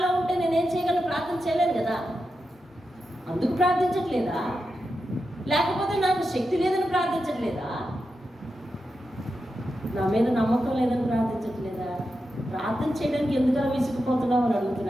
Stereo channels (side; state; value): both; normal; correlation 0.89